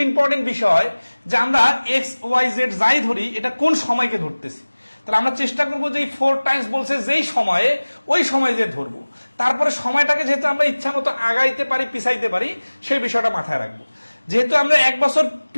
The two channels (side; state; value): both; inverted; correlation -1.00